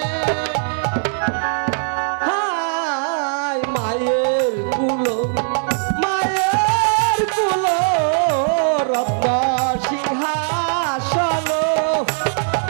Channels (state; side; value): silent; left; digital silence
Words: হায় মায়ের কুলো, মায়ের কুলো রত্ন সিংহাসন।